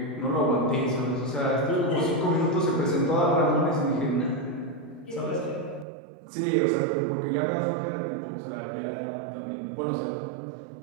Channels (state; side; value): drops out; left; at 5.9 s